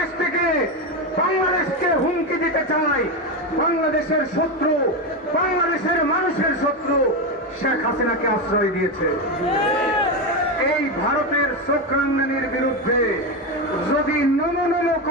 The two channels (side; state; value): both; normal; correlation 0.13